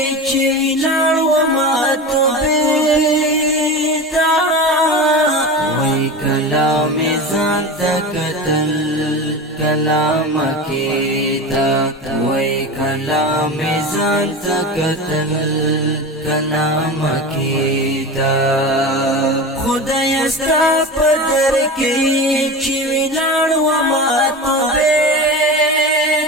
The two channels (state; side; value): normal; both; correlation 0.27